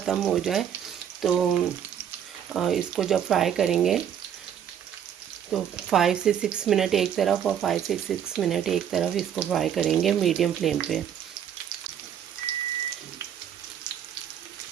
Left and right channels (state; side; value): quieter; left; 9.2 dB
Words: हो जाए। तो इसको जब फ्राई करेंगे तो 5 से 6 मिनट एक तरफ और 5 से 6 मिनट एक तरफ इसको फ्राई करेंगे मीडियम फ्लेम पे।